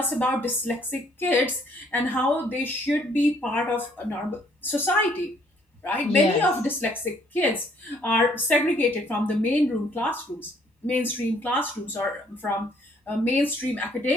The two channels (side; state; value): both; normal; correlation 0.64